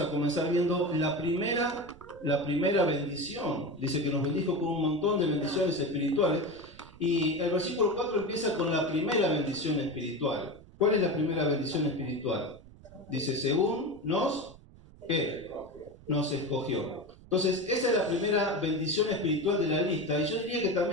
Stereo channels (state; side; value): noise; right; rumble, 22 dB below the sound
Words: a comenzar viendo la primera bendición. Dice que nos bendijo con un montón de bendiciones espirituales. Y el versículo 4 empieza con la primera bendición espiritual. ¿Cuál es la primera bendición espiritual? Dice, según nos escogió. Entonces, esa es la primera bendición espiritual de la lista, y yo diría que